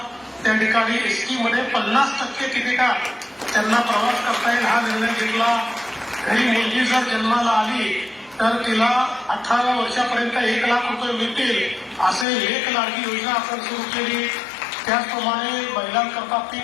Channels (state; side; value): drops out; right; at 12.2 s